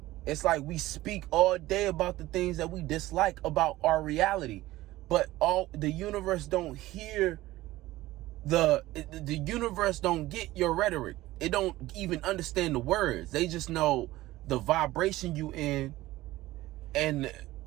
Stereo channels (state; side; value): quieter; left; 17.0 dB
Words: It's like we speak all day about the things that we dislike about our reality, but the universe don't hear the universe don't get your rhetoric. It don't even understand the words. They just know the vibration you in, and this